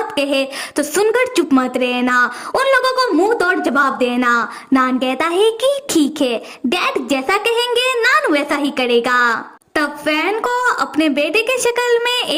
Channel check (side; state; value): both; identical; correlation 1.00